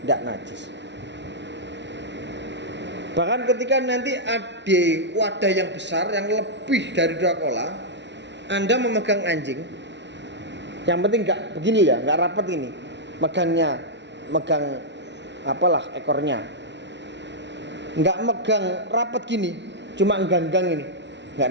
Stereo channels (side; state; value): left; late; 0.51 ms